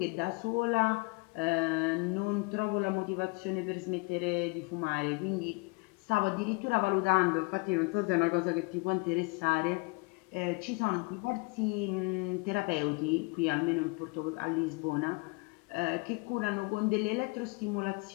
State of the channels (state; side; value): quieter; right; 28.7 dB